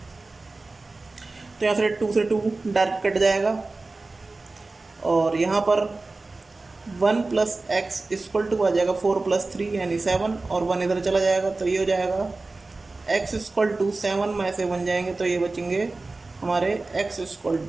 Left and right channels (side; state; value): left; quieter; 3.4 dB